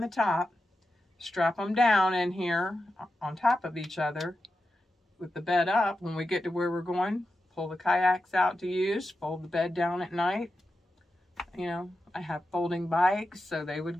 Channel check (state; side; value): normal; both; correlation 0.90